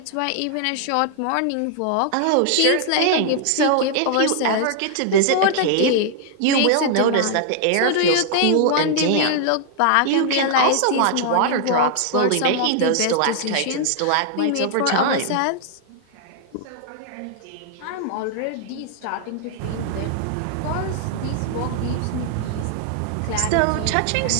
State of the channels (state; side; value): different; both; correlation -0.01